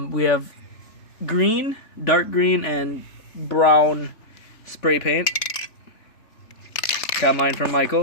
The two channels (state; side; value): late; right; 3.4 ms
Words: We have green, dark green, and brown spray paint. Got mine from